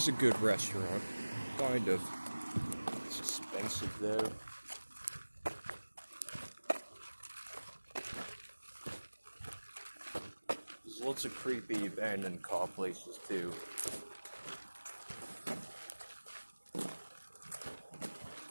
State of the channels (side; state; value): both; inverted; correlation -1.00